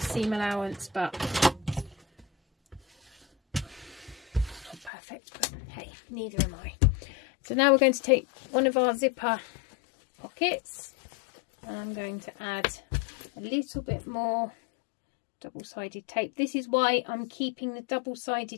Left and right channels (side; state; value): right; drops out; at 4.9 s